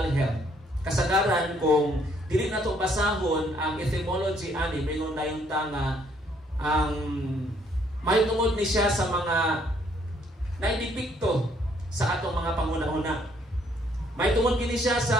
health. Kasagaran kung dili na to basahon ang etymology ani mingon na yung tanga ang may tungod ni siya sa mga naidipikto sa atong mga panghuna-huna. May tungod kini siya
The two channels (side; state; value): both; normal; correlation 0.67